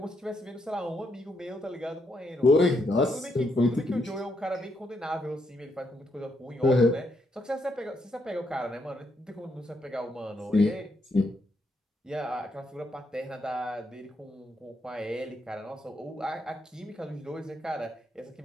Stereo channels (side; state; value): both; normal; correlation 0.78